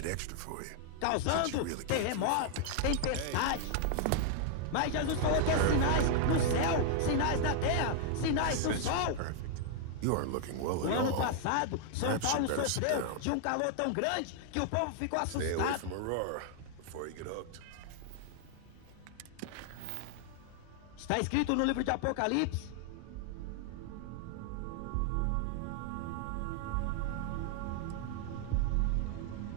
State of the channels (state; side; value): different; both; correlation 0.00